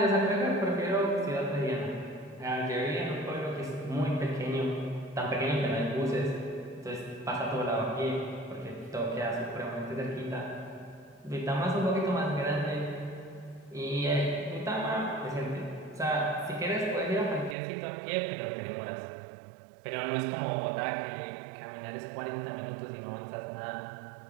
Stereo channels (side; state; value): left; drops out; at 17.6 s